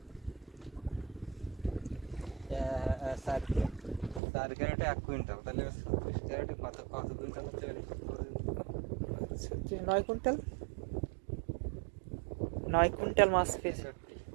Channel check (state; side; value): drops out; left; at 4.2 s